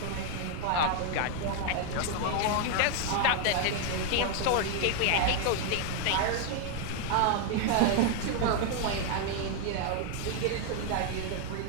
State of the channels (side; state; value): both; different; correlation 0.00